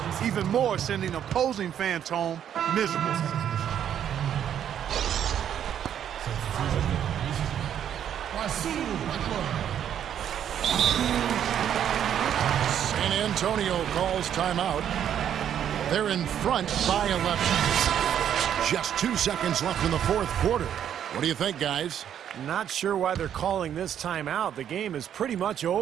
even more sending opposing fans home miserable. San Antonio calls timeout. They're in front by 11. Just 2 seconds left in the fourth quarter. What do you think, guys? Not sure why they're calling this timeout. The game is pretty much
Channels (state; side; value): quieter; left; 9.6 dB